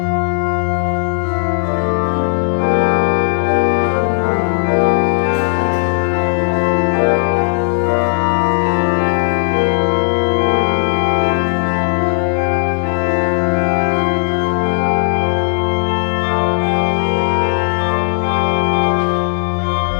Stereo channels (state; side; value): silent; right; digital silence